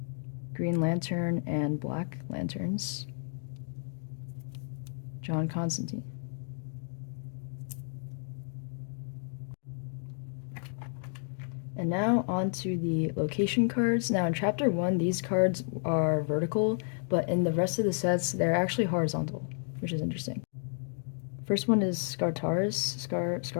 Green Lantern and Black Lanterns, John Constantine. And now on to the location cards. Now in Chapter 1, these cards are vertical, but in the rest of the sets, they're actually horizontal, which is interesting. First one is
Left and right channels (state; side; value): silent; right; 57 dB below the other